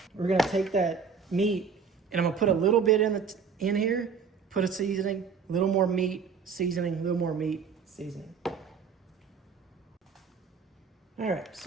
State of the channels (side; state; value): left; quieter; 5.9 dB